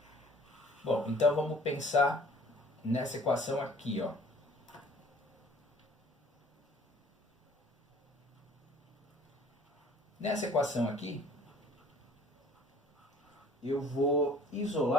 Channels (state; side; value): normal; both; correlation 0.52